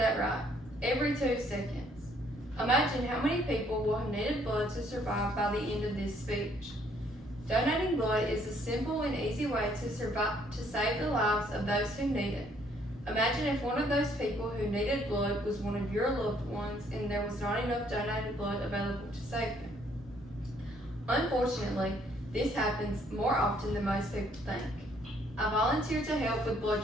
right. Every 2 seconds. Imagine how many people will have needed blood to survive by the end of this speech. Donating blood is a simple and easy way to save the lives of those who need it. Imagine if one of those people who needed blood was one of your loved ones and there was not enough donated blood available to save them. Unfortunately, this happens more often than most people think. I volunteer to help with blood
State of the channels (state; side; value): normal; both; correlation 0.66